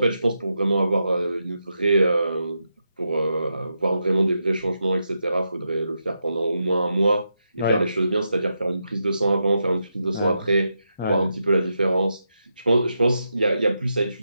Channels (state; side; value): inverted; both; correlation -0.85